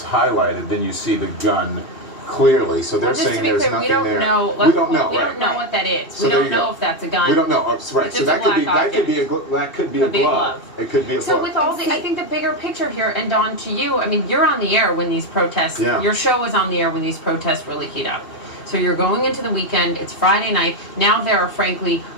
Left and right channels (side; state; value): right; late; 2.7 ms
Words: highlighted, then you see the gun clearly. So they're saying there's nothing there. We don't know what that is. So we don't know if that's a gun. We don't know. Right. So that could be a glove. It could be a glove. So with all I think the bigger picture here, and Dawn, to you, I mean, you're on the air when these protests. Your show was on the air when these protests really heat up. So you're going into the weekend. It's Friday night. Now there are frankly